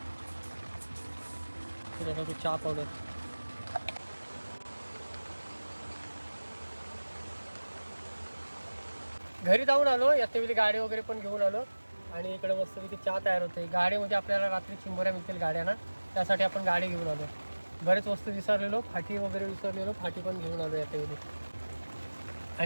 टाकू चहा पावडर. घरी जाऊन आलो, याच्यावेळी गाडी वगैरे पण घेऊन आलो. आणि इकडे मस्तपैकी चहा तयार होते. गाडीमध्ये आपल्याला रात्री चिंबोऱ्या मिळतील गाड्यांना, त्यासाठी आपण गाडी घेऊन आलो. बरेच वस्तू विसरलेलो, फाटी वगैरे विसरलेलो, फाटी पण घेऊन आलो याच्यावेळी.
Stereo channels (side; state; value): both; inverted; correlation -1.00